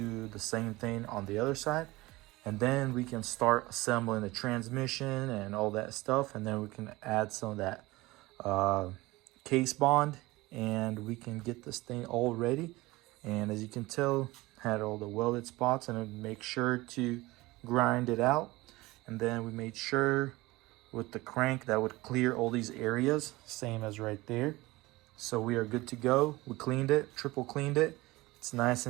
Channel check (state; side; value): quieter; left; 20.5 dB